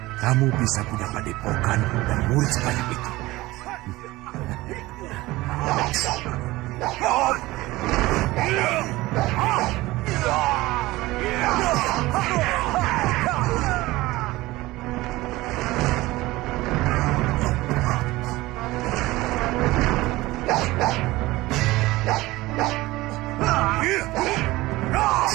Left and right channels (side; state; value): left; quieter; 19.2 dB